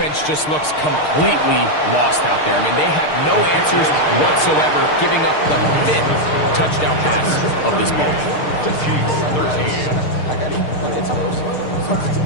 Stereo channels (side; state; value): right; late; 6.6 ms